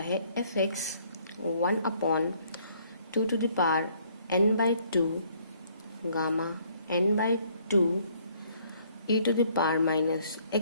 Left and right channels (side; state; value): both; inverted; correlation -0.63